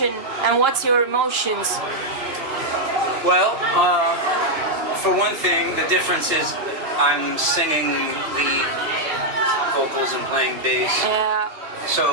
and what's your emotions? Well, for one thing, the difference is I'm singing lead vocals and playing bass.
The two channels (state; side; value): late; left; 2.9 ms